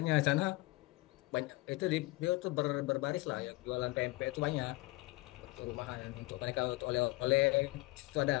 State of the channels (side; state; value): right; quieter; 21.9 dB